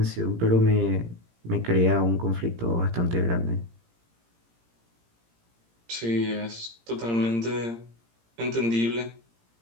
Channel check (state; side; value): late; left; 17 ms